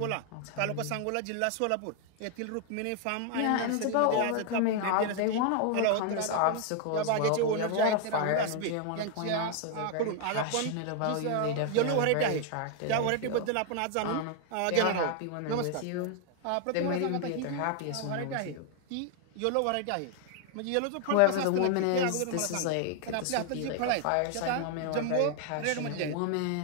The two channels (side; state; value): both; different; correlation 0.00